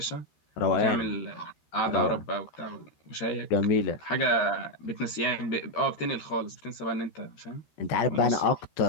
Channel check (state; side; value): late; right; 13 ms